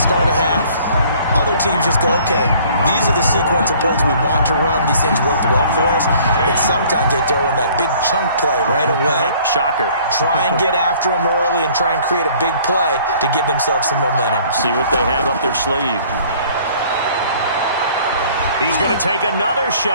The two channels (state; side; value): inverted; both; correlation -0.55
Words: a half. Other teams just go, okay, these are the sequence of plays we want to run. These things worked well for us. And sometimes they throw in that big chunk play right away. Shocker. Try and get after them early and try and create a big play to give themselves some momentum. See what they have up their sleeve. He's going to take another